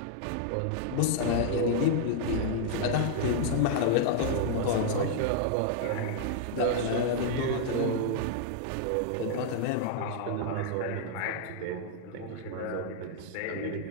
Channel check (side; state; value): both; different; correlation -0.01